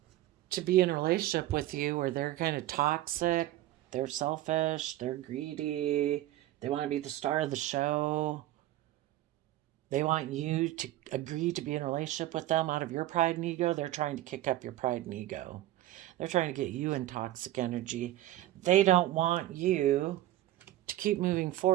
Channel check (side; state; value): left; quieter; 14.7 dB